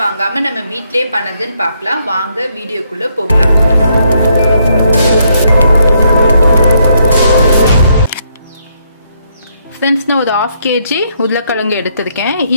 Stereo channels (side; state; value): both; inverted; correlation -0.74